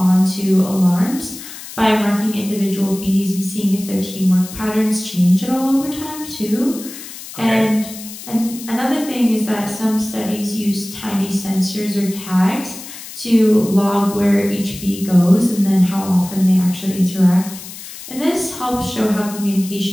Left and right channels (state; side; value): noise; left; hiss, 13 dB below the sound